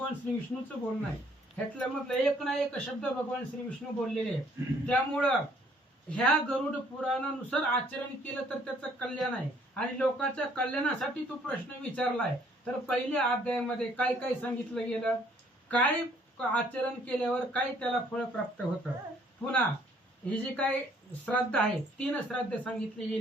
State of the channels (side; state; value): both; normal; correlation 0.62